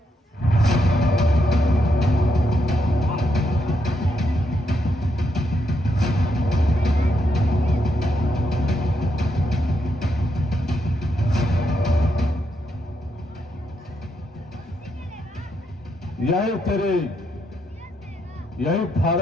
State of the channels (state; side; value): normal; both; correlation 0.79